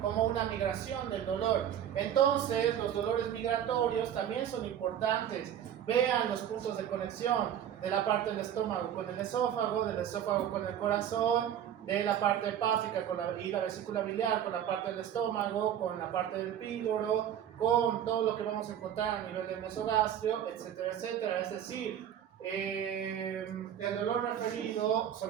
una migración del dolor. Entonces, los dolores migratorios también son importantes. Vean los puntos de conexión de la parte del estómago con el esófago, del esófago con el corazón, de la parte hepática y la vesícula biliar con la parte del estómago, con la parte del píloro, con todo lo que vamos a encontrar a nivel del mesogastrio, etcétera, etcétera. Es decir, el dolor referido,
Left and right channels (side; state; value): left; quieter; 10.0 dB